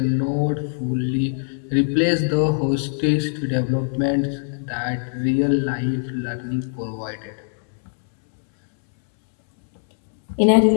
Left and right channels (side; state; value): right; silent; 64 dB below the other